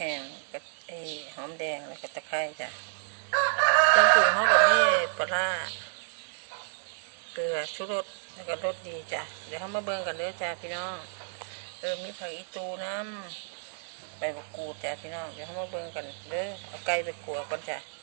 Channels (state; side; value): silent; left; digital silence